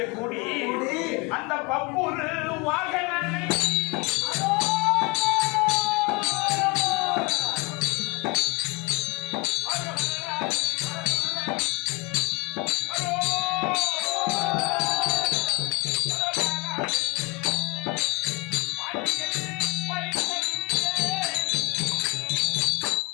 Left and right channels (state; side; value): quieter; right; 26.8 dB